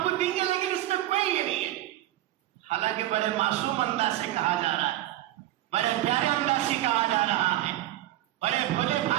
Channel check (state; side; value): quieter; left; 14.5 dB